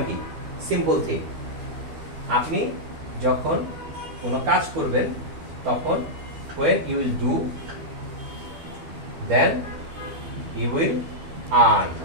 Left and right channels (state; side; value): late; left; 12 ms